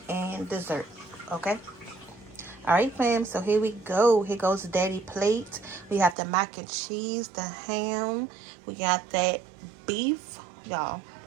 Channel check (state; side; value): drops out; left; at 6.2 s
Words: and dessert, okay? Alright, fam, so here we go. Here goes Daddy plate. We have the mac and cheese, the ham. We got that beef. Y'all,